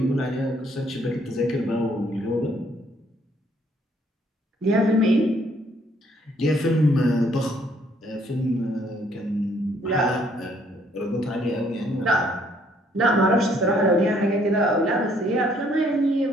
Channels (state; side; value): normal; both; correlation 0.65